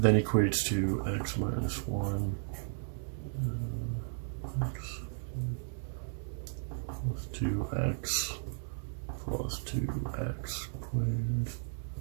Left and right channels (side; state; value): left; silent; 55 dB below the other